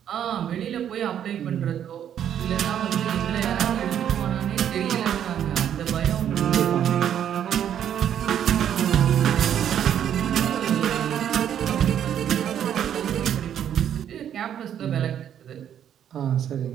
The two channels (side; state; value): left; quieter; 9.7 dB